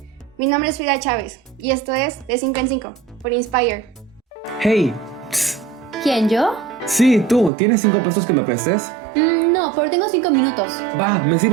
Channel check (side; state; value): left; drops out; at 7.5 s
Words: Mi nombre es Frida Chávez y esto es De 5 en 5 por Inspire. Hey, psst. ¿Quién, yo? Sí, tú, ¿tienes 5 pesos que me prestes? No, pero tengo 5 minutos. Va, me